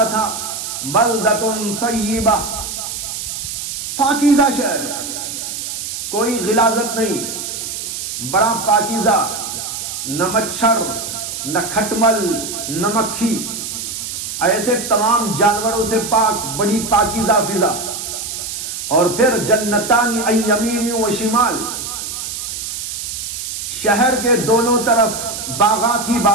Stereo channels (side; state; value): right; noise; hiss, 6 dB below the sound